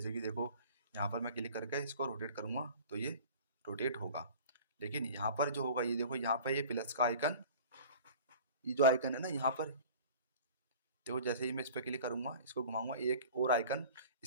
कि देखो यहाँ पर मैं क्लिक करके इसको रोटेट करूँगा तो ये रोटेट होगा। लेकिन यहाँ पर जो होगा, ये देखो यहाँ पर ये प्लस का आइकन, ये जो आइकन है ना यहाँ पर, देखो जैसे ही मैं इस पर क्लिक करूँगा, इसको घुमाऊंगा, एक और आइकन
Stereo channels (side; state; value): both; inverted; correlation -0.43